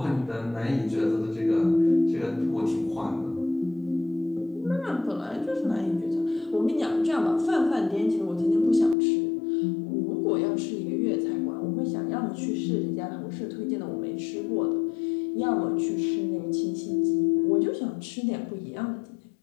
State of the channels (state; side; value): drops out; right; at 9.0 s